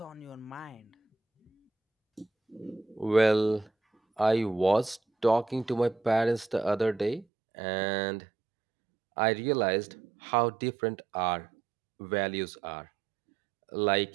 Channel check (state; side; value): drops out; left; at 7.2 s